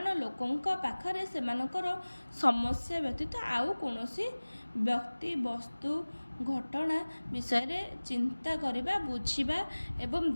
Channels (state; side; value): inverted; both; correlation -1.00